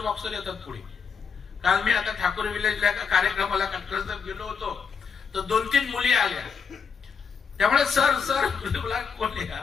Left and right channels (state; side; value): quieter; right; 6.1 dB